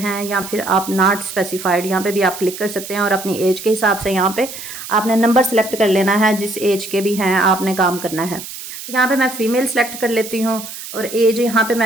या फिर आप नॉट स्पेसिफाइड। यहाँ पे भी आप क्लिक कर सकते हैं और अपनी एज के हिसाब से यहाँ पे आपने नंबर सेलेक्ट कर लेना है। जिस एज के भी हैं आपने काम करना है। तो यहाँ पे मैं फ़ीमेल सेलेक्ट कर लेती हूँ और एज यहाँ पे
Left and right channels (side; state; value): right; noise; hiss, 11 dB below the sound